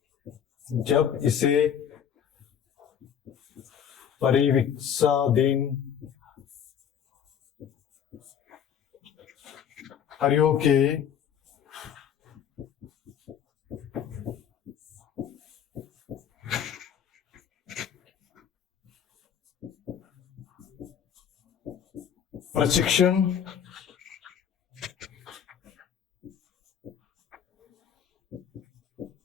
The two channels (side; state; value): right; quieter; 8.5 dB